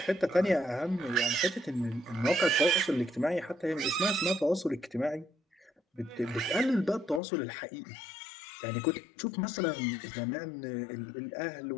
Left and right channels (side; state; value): right; drops out; at 7.2 s